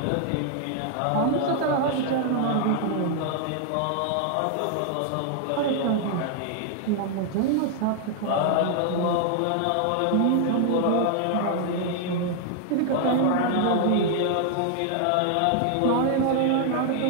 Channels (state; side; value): different; both; correlation 0.00